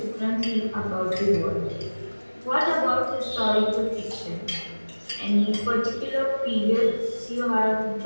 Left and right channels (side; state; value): both; inverted; correlation -1.00